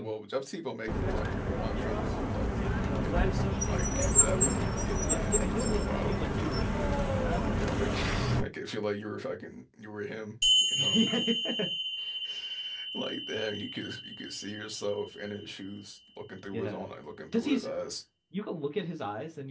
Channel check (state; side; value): identical; both; correlation 1.00